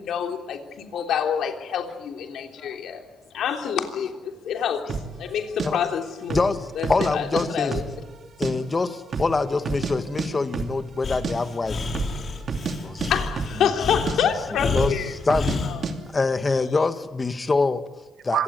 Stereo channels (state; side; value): quieter; right; 3.4 dB